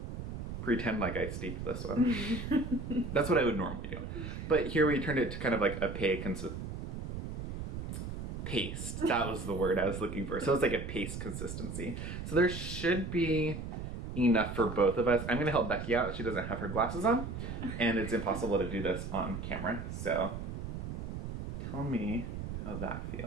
Pretend like I steeped this one. That's what I would normally do. But here we turned it to kind of like a paste. That was the word I was looking for. So it's like a paste consistency. So there should be enough for both of us. I'm gonna help Becky out. She doesn't have her glasses on, and it's impossible to do this on camera. So tell me how that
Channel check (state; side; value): noise; right; rumble, 6 dB below the sound